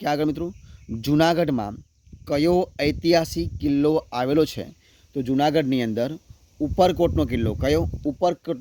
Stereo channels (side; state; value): both; identical; correlation 1.00